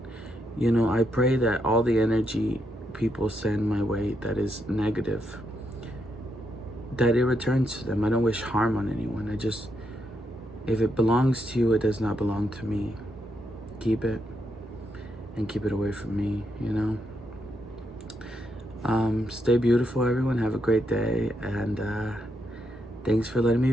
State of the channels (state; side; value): normal; both; correlation 0.80